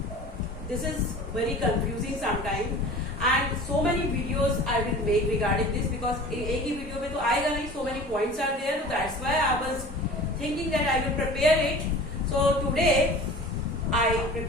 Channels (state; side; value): normal; both; correlation 0.40